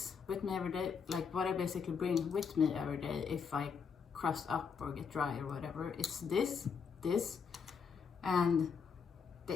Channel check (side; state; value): right; quieter; 6.1 dB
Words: with me every day. Like, what I basically bring with me every day if I crust up or get dry or whatever, it's this, and